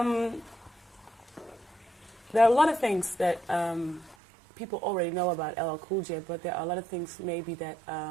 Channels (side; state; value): left; drops out; at 4.2 s